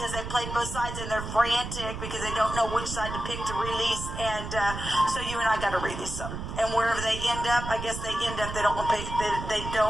they played both sides, and they're frantic because they don't know which side to pick to release. And so you and I got to release them, and wherever they end up, I guess they end up, they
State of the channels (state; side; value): noise; right; rumble, 7 dB below the sound